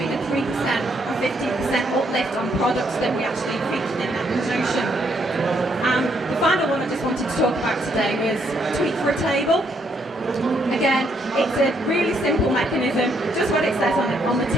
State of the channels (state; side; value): normal; both; correlation 0.72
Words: a 3% and 50% uplift on products that we actually featured in that promotion. The final one I just wanted to talk about today was Tweet for a Table. Again, it's a really simple mechanism, just what it says on the